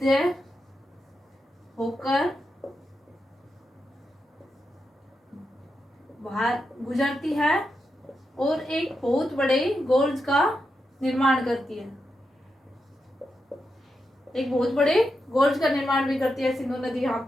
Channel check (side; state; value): both; normal; correlation 0.87